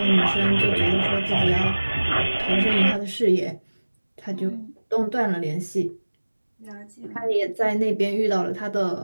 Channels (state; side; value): inverted; both; correlation -1.00